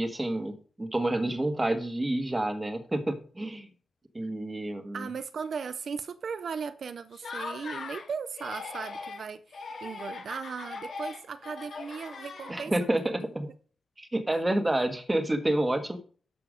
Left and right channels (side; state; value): both; normal; correlation 0.95